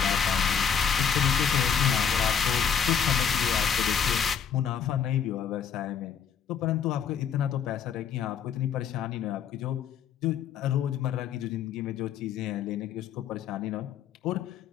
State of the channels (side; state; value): right; quieter; 7.6 dB